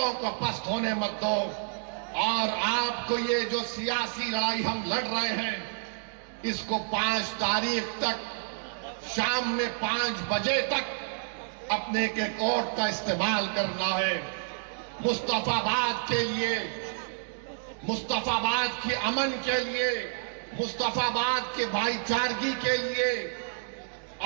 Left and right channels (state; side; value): silent; left; digital silence